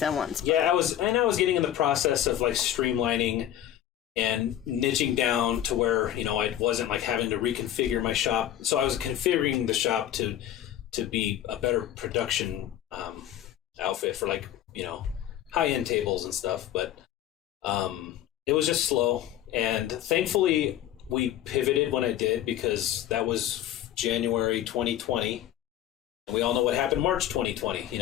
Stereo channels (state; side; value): quieter; right; 11.9 dB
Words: at once. But. Yeah, I was getting in the process of like streamlining and niching down to where, you know, I wasn't like having to reconfigure my shop. So I was configuring the shop to be a better production outfit for, like, you know, high-end tables and stuff. But it was just slow, and thankfully we pivoted when I did, because that was January 2020, and we all know what happened March 2020, you